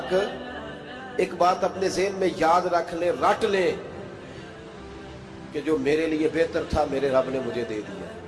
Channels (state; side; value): identical; both; correlation 1.00